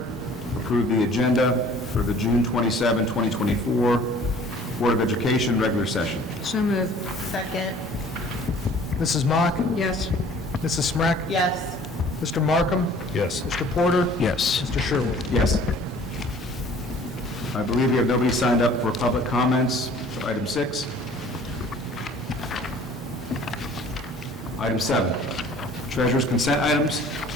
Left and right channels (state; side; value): normal; both; correlation 0.51